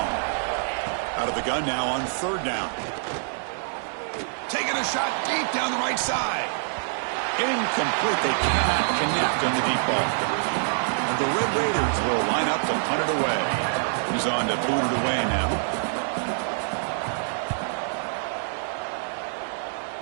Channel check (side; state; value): left; silent; digital silence